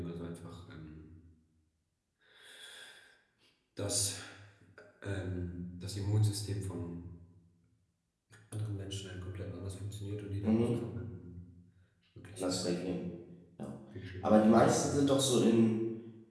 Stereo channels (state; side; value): identical; both; correlation 1.00